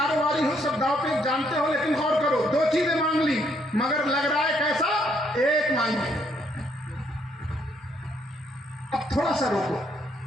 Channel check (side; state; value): both; normal; correlation 0.71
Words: ہو, سب داؤ پہ جانتے ہو, لیکن غور کرو. 2 چیزیں مانگ لی مگر لگ رہا ہے کیسا, ایک مانگی. اب تھوڑا سا روکو,